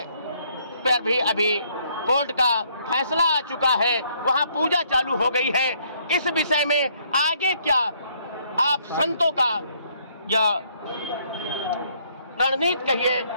पर भी अभी कोर्ट का फैसला आ चुका है, वहां पूजा चालू हो गई है। इस विषय में आगे क्या आप संतों का या रणनीति कहिए,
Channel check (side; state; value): both; inverted; correlation -0.67